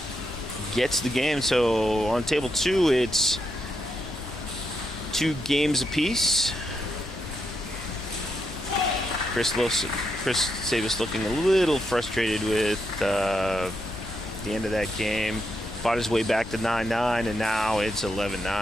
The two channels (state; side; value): normal; both; correlation 0.81